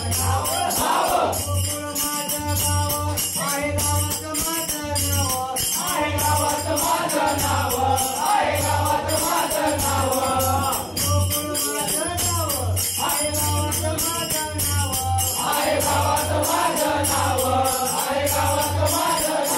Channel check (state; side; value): identical; both; correlation 1.00